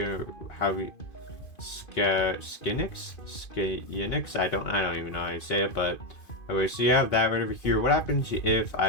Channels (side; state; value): right; late; 2.5 ms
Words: I don't even know how to say it, but okay, so you have that right over here. What happens if